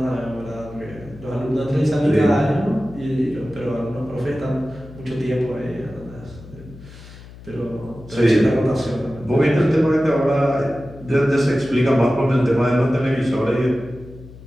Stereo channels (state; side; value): noise; left; hum, 18 dB below the sound